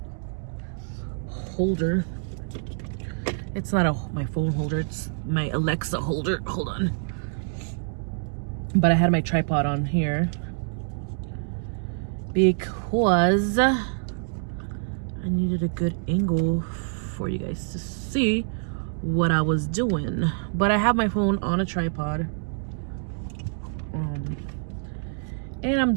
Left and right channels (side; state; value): left; silent; digital silence